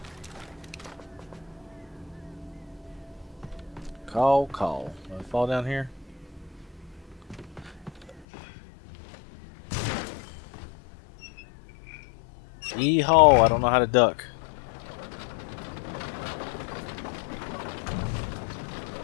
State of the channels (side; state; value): right; drops out; at 8.2 s